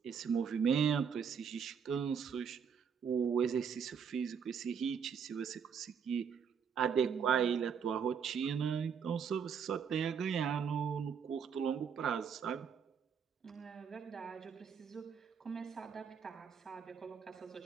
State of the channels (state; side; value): quieter; left; 6.9 dB